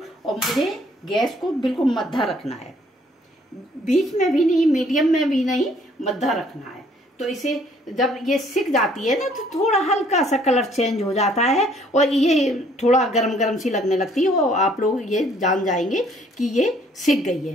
और मुझे गैस को बिल्कुल मद्धा रखना है, बीच में भी नहीं, मीडियम में भी नहीं, मद्धा रखना है। तो इसे जब ये सिक जाती है ना तो थोड़ा हल्का सा कलर चेंज हो जाता है और ये थोड़ा गरम गरम सी लगने लगती है, और आप लोग ये जान जाएंगे कि ये सिक गई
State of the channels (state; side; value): normal; both; correlation 0.62